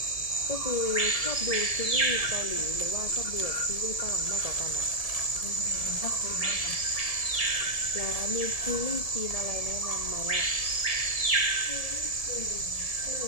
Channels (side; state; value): right; late; 1.7 ms